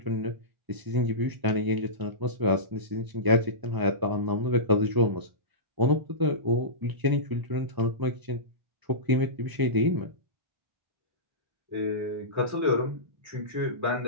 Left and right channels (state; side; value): late; left; 1.0 ms